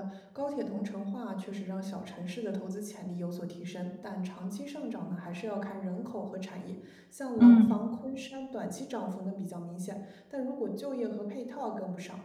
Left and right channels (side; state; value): both; identical; correlation 1.00